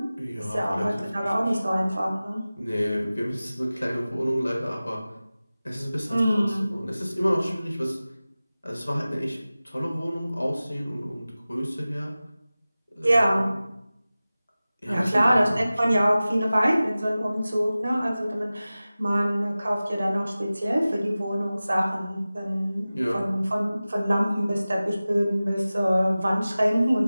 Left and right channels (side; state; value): both; inverted; correlation -0.97